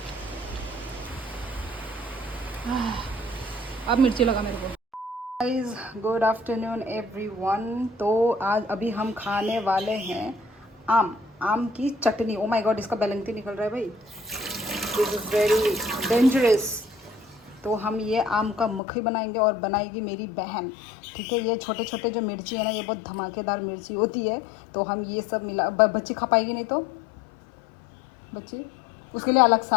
अब मिर्ची लगा मेरे को। Guys good afternoon everyone. तो आज अभी हम खाने वाले हैं आम की चटनी। ओ माय गॉड, इसका बैलेंस निकल रहा है भाई, दिस इज़ वेरी डेंजरस। तो हम ये आम का मक्खी बनाएंगे और बनाएगी मेरी बहन, ठीक है। ये छोटे छोटे जो मिर्ची है ना, ये बहुत धमाकेदार मिर्ची होती है। तो हम ये सब मिला, बच्ची खा पाएगी नहीं तो बच्ची, उसके लिए अलग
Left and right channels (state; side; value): drops out; right; at 18.8 s